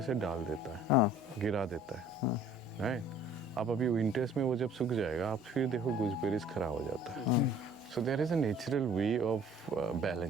डाल देता है, गिरा देता है, राइट। आप अभी विंटर्स में वो जब सूख जाएगा, आप फिर देखो गूसबेरीज खराब हो जाता है। So there is a natural way of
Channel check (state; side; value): normal; both; correlation 0.52